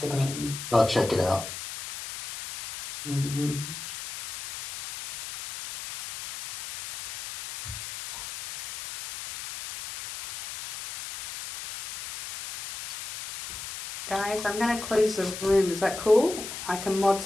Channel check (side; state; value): left; noise; hiss, 10 dB below the sound